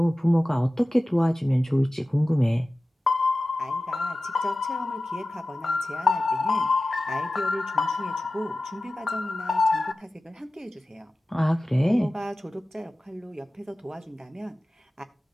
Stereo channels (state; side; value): normal; both; correlation 0.96